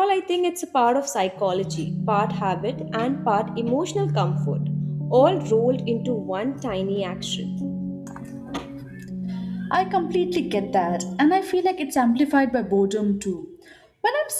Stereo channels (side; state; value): both; identical; correlation 1.00